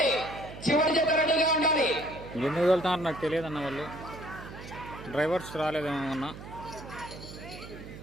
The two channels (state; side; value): noise; right; hum, 13 dB below the sound